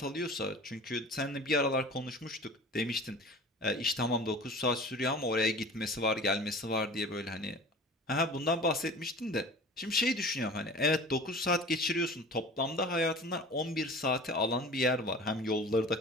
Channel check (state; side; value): normal; both; correlation 0.40